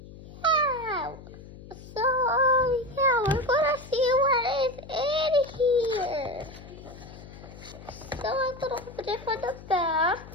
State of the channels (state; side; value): noise; left; hum, 17 dB below the sound